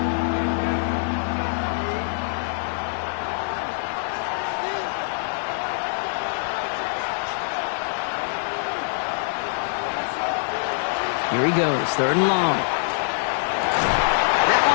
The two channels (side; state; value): right; silent; digital silence